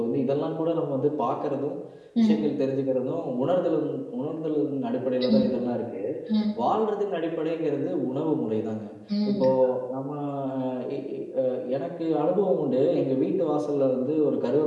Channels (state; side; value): identical; both; correlation 1.00